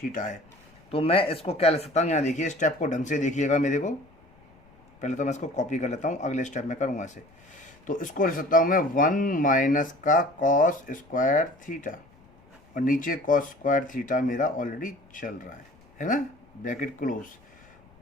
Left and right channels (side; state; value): left; noise; rumble, 29 dB below the sound